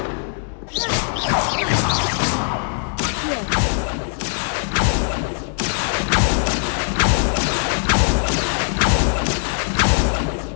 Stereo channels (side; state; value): right; silent; digital silence